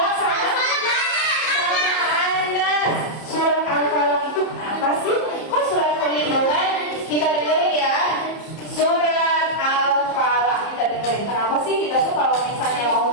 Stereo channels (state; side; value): late; right; 30 ms